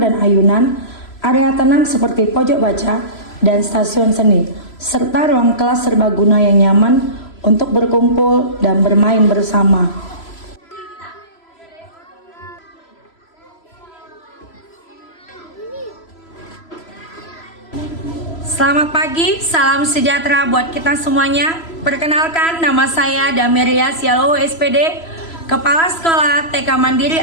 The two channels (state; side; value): late; right; 3.0 ms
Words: dan ayunan, area tenang seperti pojok baca dan stasiun seni, serta ruang kelas serbaguna yang nyaman untuk berkumpul dan bermain bersama. Selamat pagi, salam sejahtera buat kita semuanya. Perkenalkan, nama saya Damiria Sialo SPD, Kepala Sekolah TK Mandiri